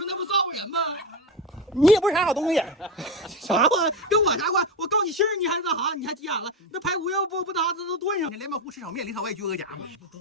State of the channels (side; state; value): both; normal; correlation 0.17